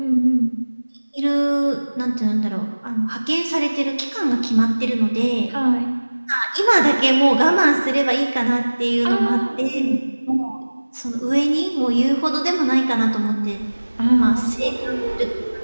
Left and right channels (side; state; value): both; inverted; correlation -1.00